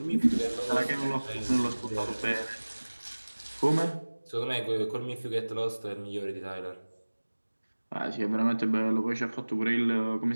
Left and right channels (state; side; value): inverted; both; correlation -1.00